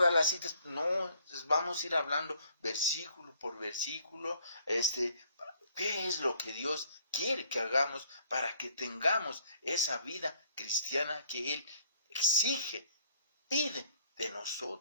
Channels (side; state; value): both; inverted; correlation -0.61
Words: las citas, no, vamos a ir hablando versículo por versículo, qué es lo que Dios quiere que hagamos para que tengamos esa vida cristiana que Él exige, pide de